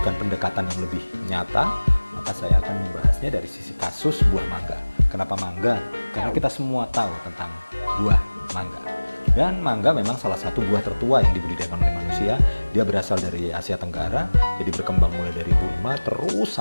pendekatan yang lebih nyata, maka saya akan membahasnya dari sisi kasus buah mangga. Kenapa mangga? Karena kita semua tahu tentang buah mangga. Dan mangga memang salah satu buah tertua yang dibudidayakan oleh manusia. Dia berasal dari Asia Tenggara, jadi berkembang mulai dari Burma terus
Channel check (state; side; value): inverted; both; correlation -1.00